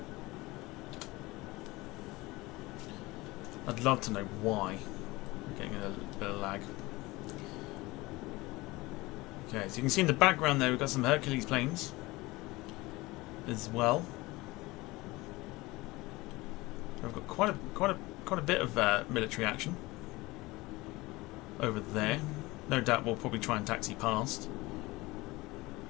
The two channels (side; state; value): right; quieter; 21.3 dB